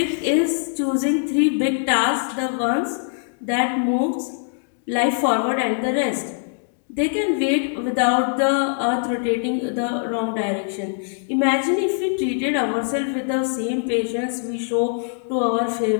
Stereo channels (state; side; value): silent; right; 64 dB below the other